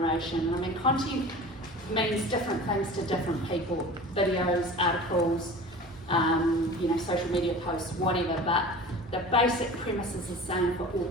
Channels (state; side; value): normal; both; correlation 0.38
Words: I mean, content means different things to different people, videos, articles, social media posts, whatever, but the basic premise is the same for all